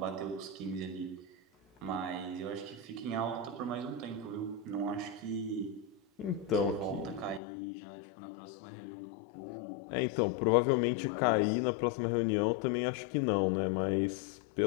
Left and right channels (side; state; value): right; drops out; at 7.4 s